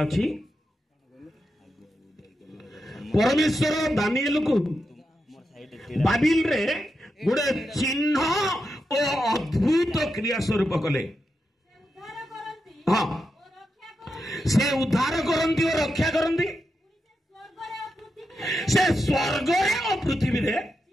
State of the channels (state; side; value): normal; both; correlation 0.87